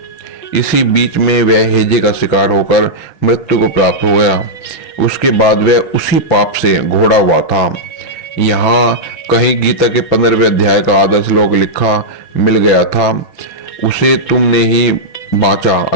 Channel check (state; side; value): late; right; 6.0 ms